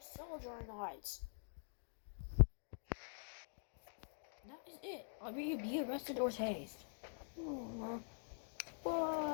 cell during nights." "That is it. Either you be arrested or tased."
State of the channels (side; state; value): right; silent; digital silence